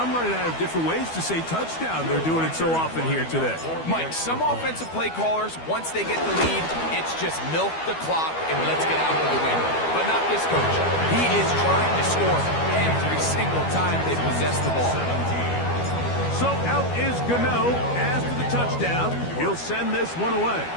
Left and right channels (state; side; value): late; right; 12 ms